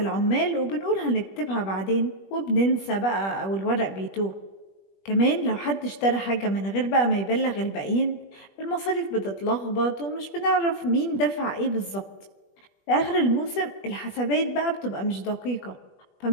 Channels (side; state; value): right; late; 21 ms